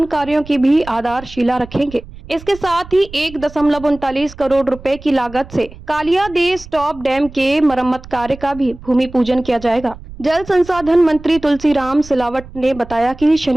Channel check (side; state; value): right; noise; rumble, 17 dB below the sound